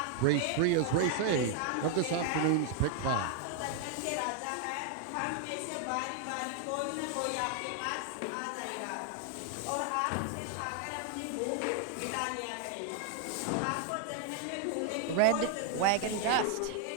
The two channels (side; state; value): both; different; correlation 0.00